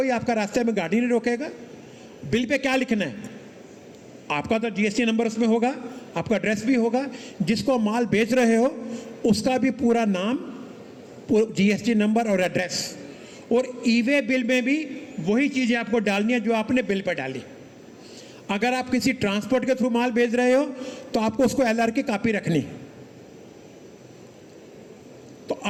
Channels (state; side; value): identical; both; correlation 1.00